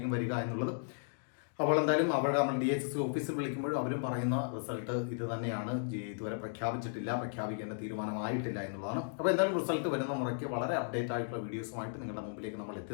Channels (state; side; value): silent; right; digital silence